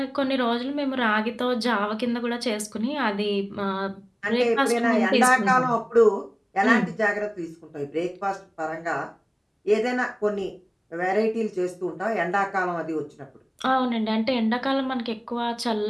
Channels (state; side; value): identical; both; correlation 1.00